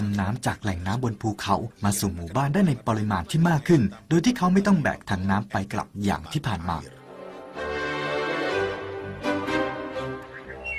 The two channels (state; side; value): identical; both; correlation 1.00